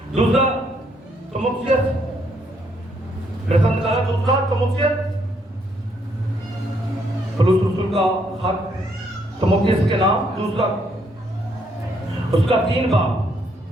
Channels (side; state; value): both; normal; correlation 0.71